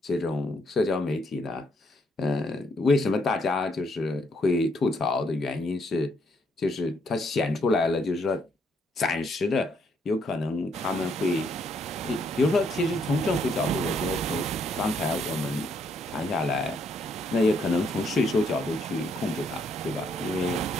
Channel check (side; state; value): both; normal; correlation 0.72